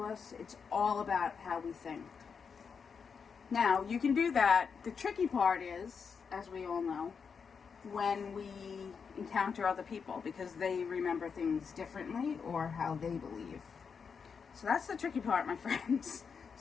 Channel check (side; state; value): right; quieter; 6.0 dB